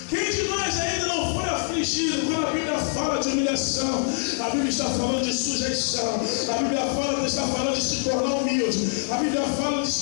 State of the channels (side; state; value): right; silent; 57 dB below the other